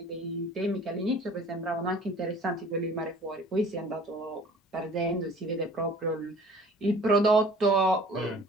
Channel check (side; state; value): both; normal; correlation 0.49